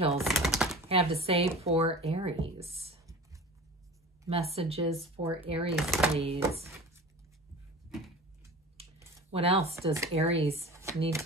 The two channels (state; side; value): normal; both; correlation 0.37